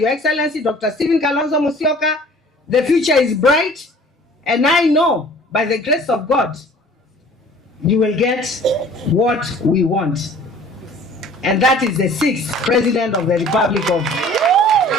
Excellency Dr. Stephen Kalonzo Musyoka. The future is bright, and I know by the grace of God you will get what we want. And that is the 6th President of the Republic of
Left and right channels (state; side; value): normal; both; correlation 0.49